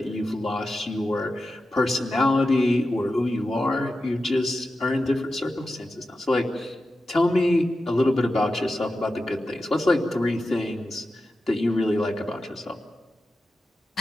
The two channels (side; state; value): both; normal; correlation 0.92